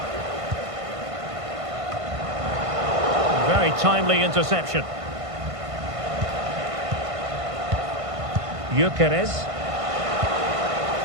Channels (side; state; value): left; late; 1.5 ms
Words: Very timely interception. Gyökeres.